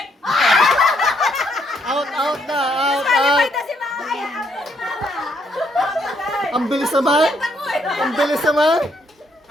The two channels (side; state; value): both; normal; correlation 0.72